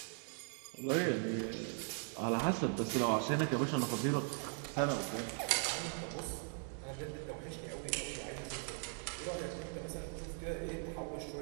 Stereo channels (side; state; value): left; silent; 51 dB below the other